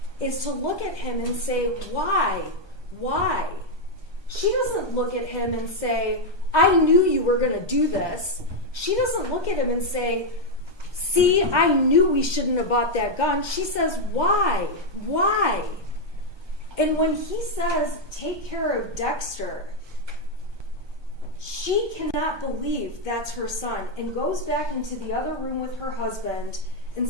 is to look at him and say, why? Why? She doesn't look at him and say, I knew you were going to do this. She doesn't look at him and say, see, I knew we shouldn't have bought that gun. She says, why? Why? And when he says, take care of Dexter, she cannot believe that's her son and goes back into the other room with her husband and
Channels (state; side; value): late; left; 1.2 ms